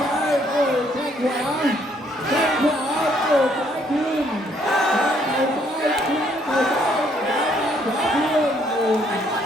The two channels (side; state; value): both; normal; correlation 0.67